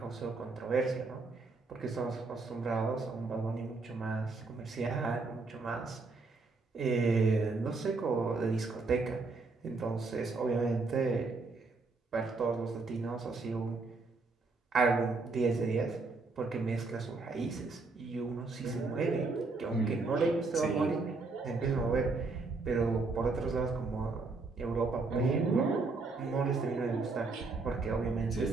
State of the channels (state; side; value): quieter; left; 3.8 dB